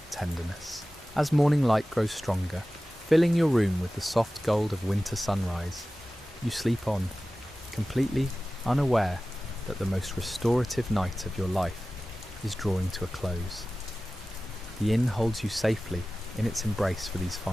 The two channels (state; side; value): normal; both; correlation 0.96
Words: tenderness. As morning light grows stronger, filling your room with the soft gold of winter sunrise, you sleep on, completely unaware that the most restorative night of your life is drawing to a close. The inn holds you safely in its embrace for these